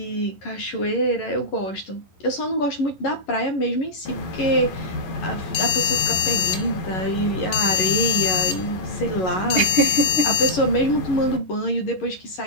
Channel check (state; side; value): late; right; 11 ms